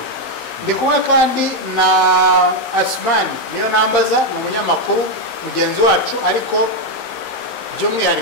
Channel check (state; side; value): late; right; 15 ms